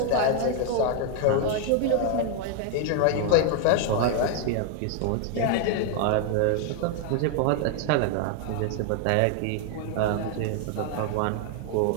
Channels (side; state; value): both; different; correlation 0.00